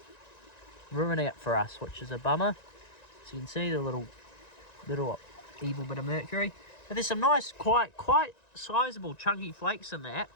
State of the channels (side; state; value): right; late; 1.9 ms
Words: ruining it for us, which is a bummer. So you can see the little evil bit of mercury. But there's some nice, quite sizable, chunky flakes in that.